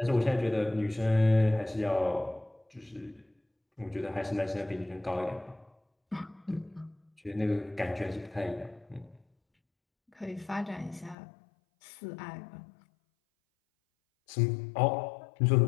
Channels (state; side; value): drops out; right; at 11.2 s